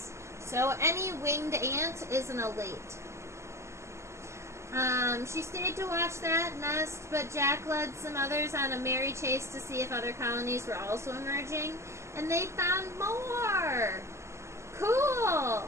So any winged ant is an elate. She stayed to watch that nest, but Jack led some others on a merry chase to see if other colonies were also emerging, and they found more. Cool.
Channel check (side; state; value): left; late; 0.13 ms